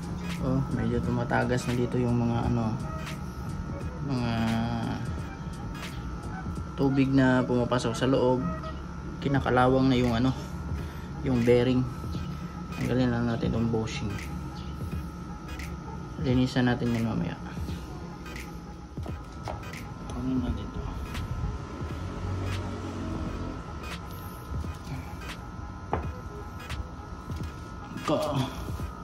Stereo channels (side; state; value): both; identical; correlation 1.00